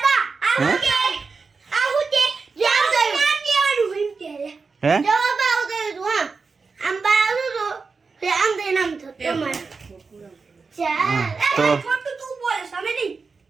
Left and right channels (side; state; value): left; quieter; 4.6 dB